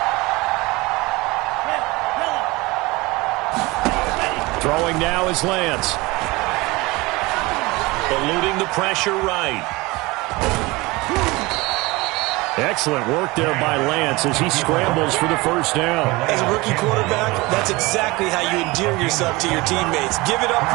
Throwing now is Lance. Eluding the pressure right. Excellent work there by Lance as he scrambles for the first down. As a rookie quarterback, that's exactly how you endear yourself to your teammates. Give it up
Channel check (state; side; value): quieter; left; 22.7 dB